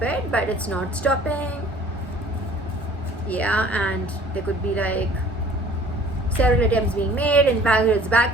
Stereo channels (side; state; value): both; normal; correlation 0.51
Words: it, but it's not stopping. Yeah, and there could be like several attempts being made, in fact it's